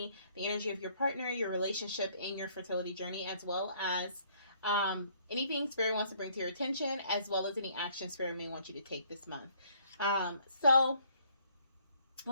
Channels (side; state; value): both; inverted; correlation -0.63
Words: the energy of your partner, your relationship, and your fertility journey, as well as anything Spirit wants to bring to your attention, as well as any action Spirit may want you to take this month. And